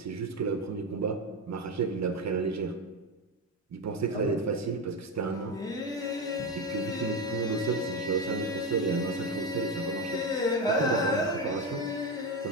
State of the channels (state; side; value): normal; both; correlation 0.15